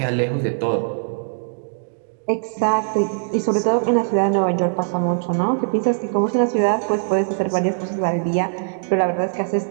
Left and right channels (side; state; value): left; silent; digital silence